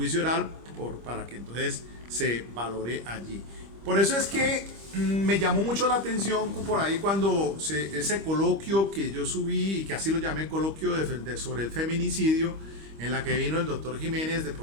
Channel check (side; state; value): left; late; 25 ms